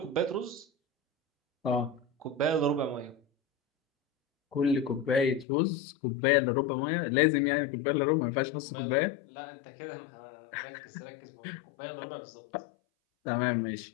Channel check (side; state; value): right; drops out; at 5.5 s